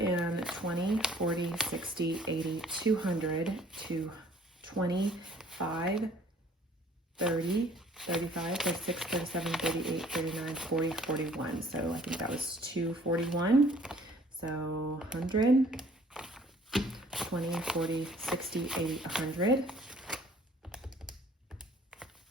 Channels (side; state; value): both; normal; correlation 0.56